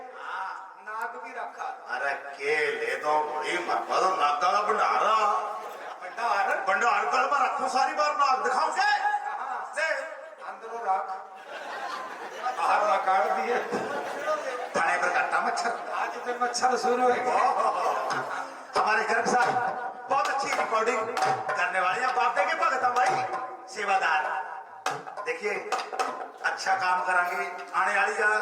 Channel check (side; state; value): both; identical; correlation 1.00